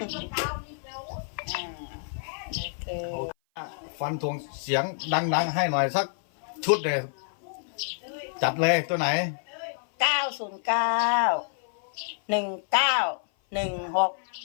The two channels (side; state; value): right; silent; 56 dB below the other